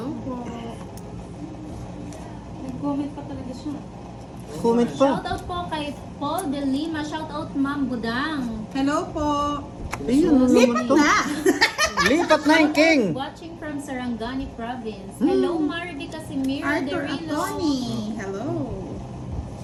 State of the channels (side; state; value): both; identical; correlation 1.00